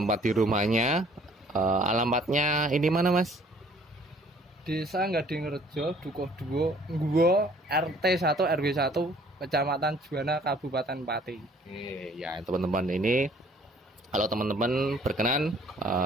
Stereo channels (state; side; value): normal; both; correlation 0.57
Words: di rumahnya. Alamatnya ini mana Mas? Desa Gadingrejo, Dukuh 2, Ngguwo, RT 1 RW 1, Kecamatan Juwana, Kabupaten Pati. Oke, ya teman-teman, ini kalau teman-teman berkenan